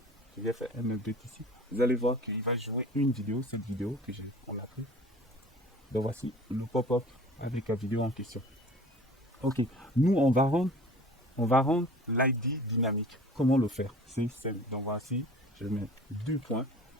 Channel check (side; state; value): both; normal; correlation 0.44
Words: Je vais faire un update ici. Vous allez voir qu'il va jouer une vidéo, cette vidéo que on a pris. Donc voici le pop-up avec la vidéo en question. Ok, nous on va rendre l'ID dynamique. Comment le faire? C'est simple. Donc voici, je mets 2 points.